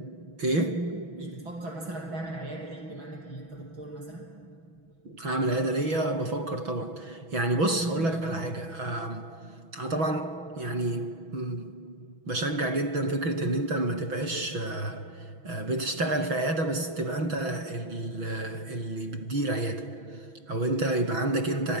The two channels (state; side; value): late; left; 6.1 ms